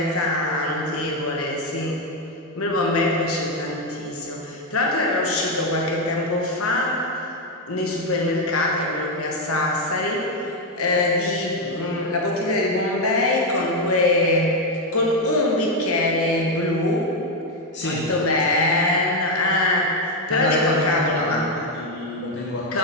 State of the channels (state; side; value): normal; both; correlation 0.05